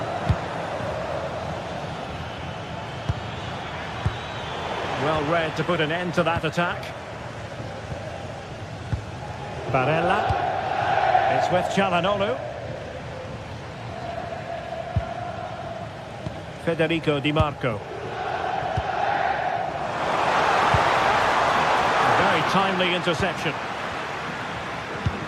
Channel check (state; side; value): identical; both; correlation 1.00